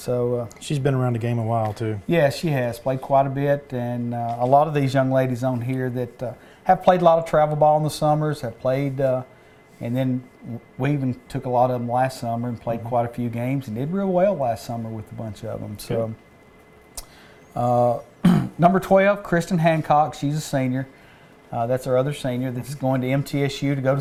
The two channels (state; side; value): identical; both; correlation 1.00